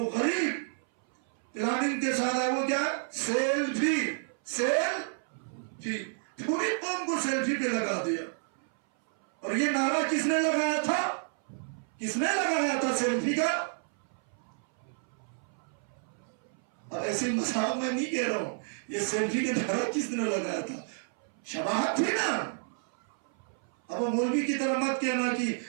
غریب پلاننگ کے ساتھ ہے. وہ کیا؟ سیلفی. سیلفی پوری قوم کو سیلفی پہ لگا دیا. اور یہ نعرہ کس نے لگایا تھا؟ کس نے لگایا تھا سیلفی کا؟ اب ایسے مساو میں نہیں کہہ رہا ہوں. یہ سیلفی کا نعرہ کس نے لگایا تھا؟ شباہت تھی نا. اب وہ مولوی کی طرح مت کہنا کہ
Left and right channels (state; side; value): silent; left; 57 dB below the other